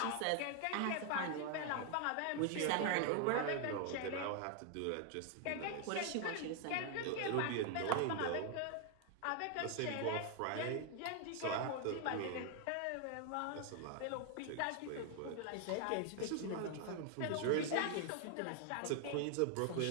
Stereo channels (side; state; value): both; different; correlation 0.00